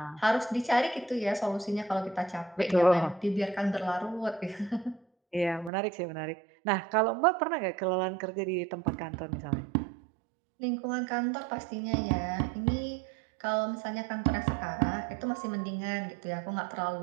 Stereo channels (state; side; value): drops out; left; at 5.7 s